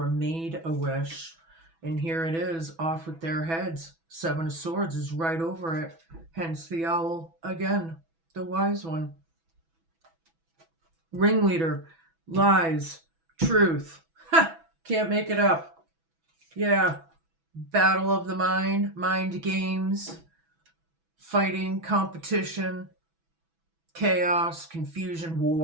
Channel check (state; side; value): late; left; 6.1 ms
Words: made a wish, and here it is, off with their heads. Seven of Swords is right over it. Hence the owl again, the wise one. Ringleader, lies, truth. Ha! Can't make it up. Yeah. Battle of the mind games, fighting, competition, chaos, confusion,